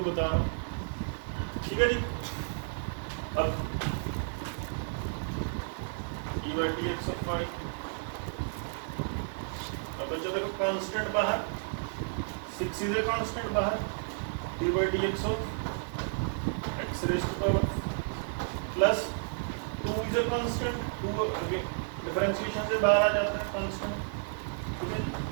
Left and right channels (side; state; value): left; silent; digital silence